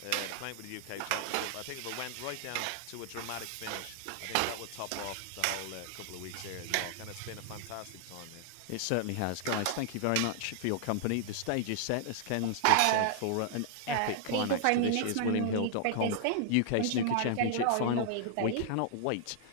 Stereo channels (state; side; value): different; both; correlation -0.01